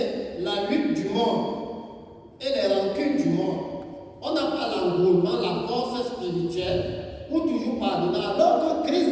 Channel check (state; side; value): identical; both; correlation 1.00